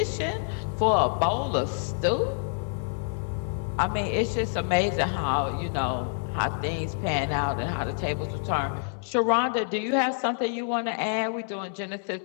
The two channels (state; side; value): silent; right; 60 dB below the other